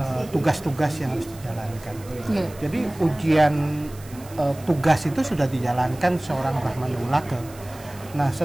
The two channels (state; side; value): noise; right; hiss, 21 dB below the sound